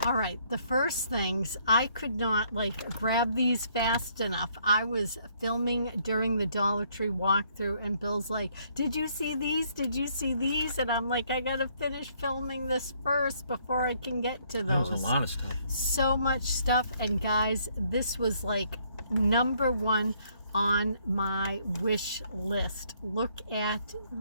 All right, the first things, I could not grab these fast enough. I was filming during the Dollar Tree walkthrough, and Bill's like, did you see these? Did you see these? And I'm like, I gotta finish filming this first before I can get to those. That was a lot of stuff. So much stuff, and guys, this was like #1 on my wish list. Look at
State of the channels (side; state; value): both; inverted; correlation -0.67